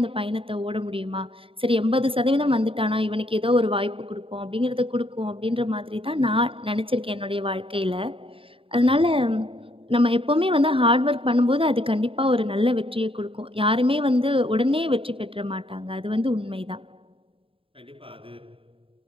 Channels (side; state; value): left; late; 0.26 ms